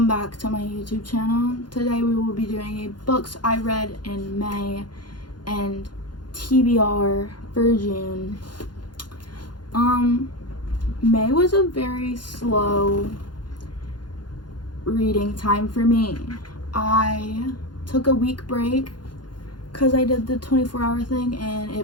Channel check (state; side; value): late; right; 0.71 ms